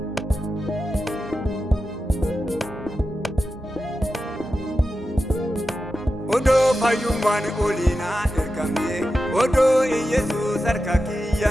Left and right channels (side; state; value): both; normal; correlation 0.91